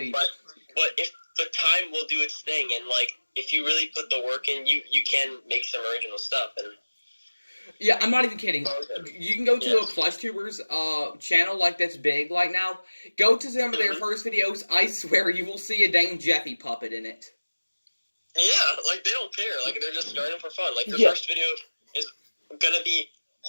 But if the time will do its thing, and, like, if you really put the work in, you can make some original stuff. And yeah, I'm not even kidding. You can go to a plush tubers channel, like, that's big like now. Go to some of their first videos. I swear you will see a dang Jeffy puppet in it. Yeah, like, they don't care. Like, they're just starting for fun. Like, their first video is gonna be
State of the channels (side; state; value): both; inverted; correlation -1.00